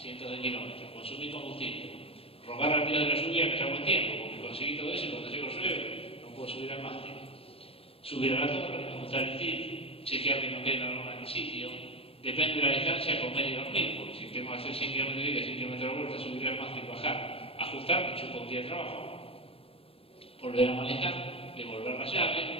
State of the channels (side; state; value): right; late; 0.27 ms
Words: de kilómetros. Consumir combustible. Rogar al día de la lluvia, que ya buen tiempo, porque conseguí todo eso y cuando llego llueve, no puedo subir al mástil. Subir a la torre, ajustar el tilt, chequear que no quede la lona en el sitio. Depende de la distancia, comer y dormir, porque si tengo que hacer 100 kilómetros de ida, 100 kilómetros de vuelta, subir al mástil, bajar, ajustar, me chupo un día de trabajo. Volver a manejar, devolver la llave,